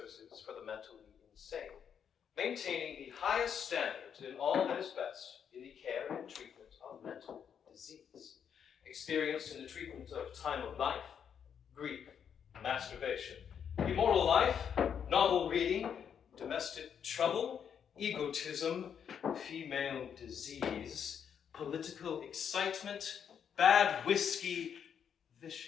for the mentally insane, maintaining the highest standards in all that is best in the care and treatment of mental disease, experienced in the treatment of time of life, grief, masturbation, immoral life, novel reading, domestic trouble, egotism, female disease, political excitement, bad whiskey,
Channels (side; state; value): right; quieter; 7.9 dB